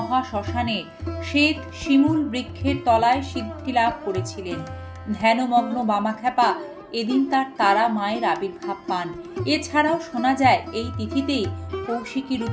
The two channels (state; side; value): identical; both; correlation 1.00